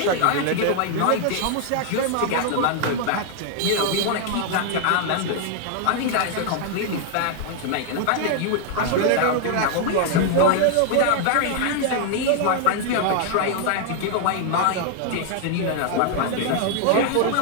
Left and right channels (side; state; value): both; different; correlation 0.00